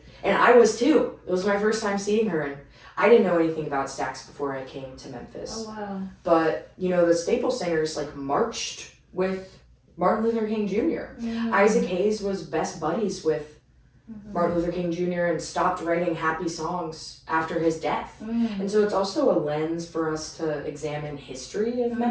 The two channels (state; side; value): identical; both; correlation 1.00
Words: and I was too. It was my first time seeing her, and I didn't know anything about Stax before I came to Memphis. Oh, wow. But, the Staple Singers, marched with Martin Luther King Jr. Isaac Hayes was best buddies with Martin Luther King Jr. and stopped writing happy songs after his death. And so it's also a lens for us to examine history of